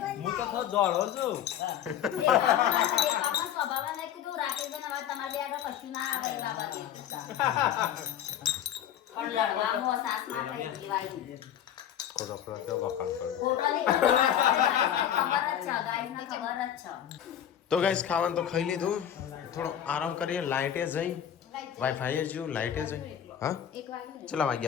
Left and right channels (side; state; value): right; quieter; 10.1 dB